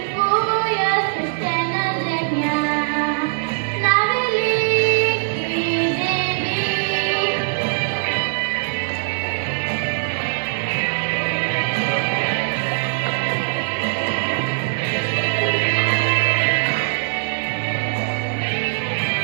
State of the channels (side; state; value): left; silent; 56 dB below the other